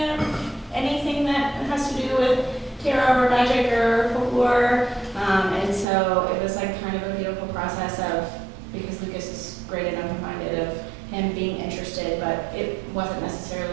anything that has to do with tarot or magic or folklore. And so it was kind of a beautiful process because Lucas is great and open-minded, of him being interested, but it wasn't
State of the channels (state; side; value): drops out; left; at 5.9 s